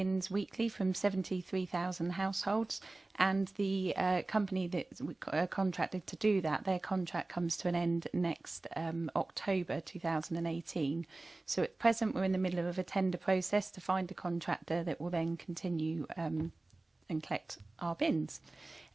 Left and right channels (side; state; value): left; quieter; 3.0 dB